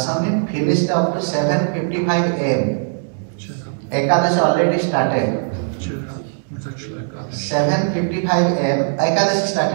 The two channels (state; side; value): silent; left; 66 dB below the other